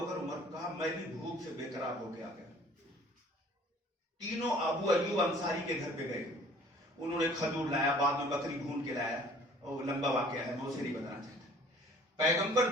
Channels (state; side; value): normal; both; correlation 0.52